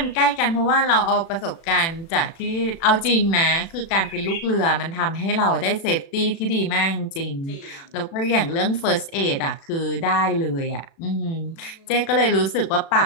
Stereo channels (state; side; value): late; right; 36 ms